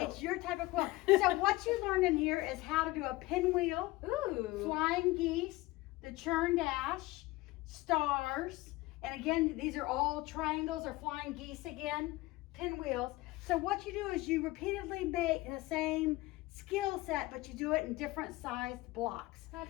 It's your type of quilt. So what you learned in here is how to do a pinwheel, flying geese, the churn dash, stars, and again, these are all triangles or flying geese again, pinwheels. So what you do is you repeatedly make the same skill set, but you do it in different sized blocks.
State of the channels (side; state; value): right; quieter; 19.8 dB